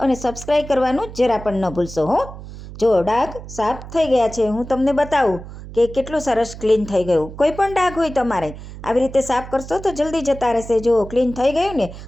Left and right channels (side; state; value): right; noise; hum, 13 dB below the sound